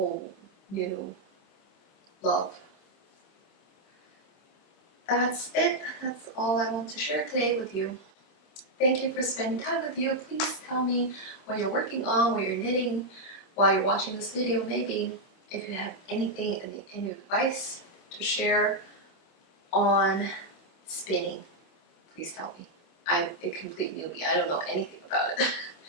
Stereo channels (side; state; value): right; late; 26 ms